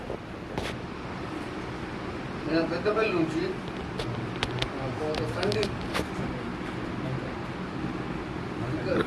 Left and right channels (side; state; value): both; identical; correlation 1.00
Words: నేను పెద్దపల్లి నుంచి, సందీప్